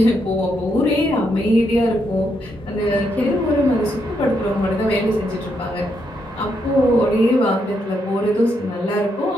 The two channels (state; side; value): normal; both; correlation 0.78